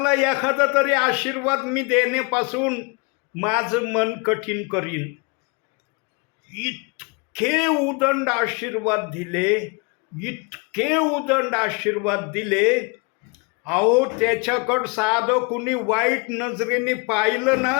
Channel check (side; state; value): right; quieter; 31.1 dB